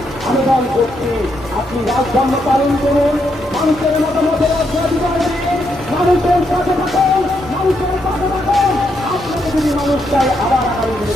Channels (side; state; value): both; normal; correlation 0.78